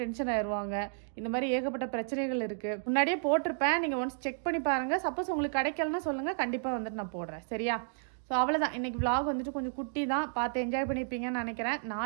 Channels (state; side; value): silent; left; digital silence